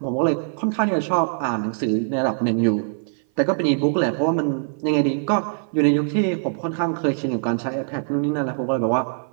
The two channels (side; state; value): left; silent; 56 dB below the other